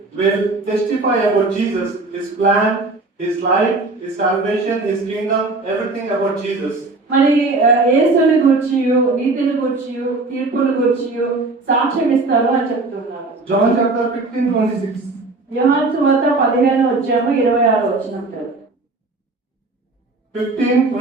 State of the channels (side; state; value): left; quieter; 3.4 dB